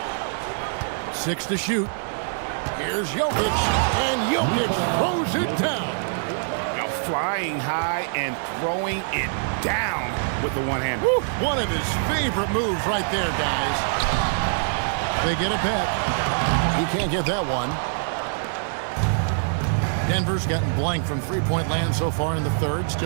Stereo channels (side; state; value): left; silent; digital silence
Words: 6 to shoot. Here's Jokic. And Jokic throws it down. Now flying high and throwing it down with the one-hander. One of his favorite moves right there, guys. They get it back. He can't get that one. Denver's gotten blank from three-point land so far in the third.